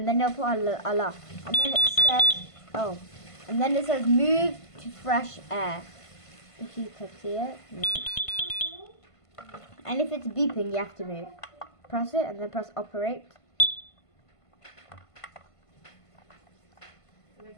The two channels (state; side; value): late; right; 1.5 ms